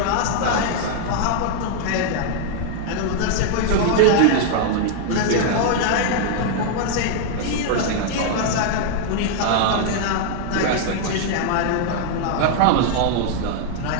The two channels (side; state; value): both; different; correlation 0.00